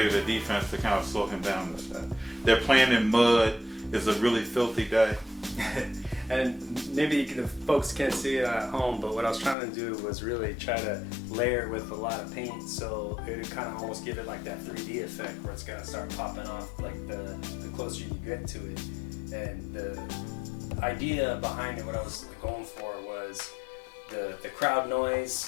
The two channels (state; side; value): drops out; right; at 9.6 s